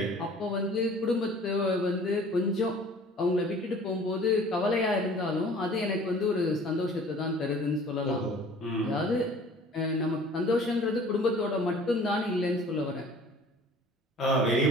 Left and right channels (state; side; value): normal; both; correlation 0.49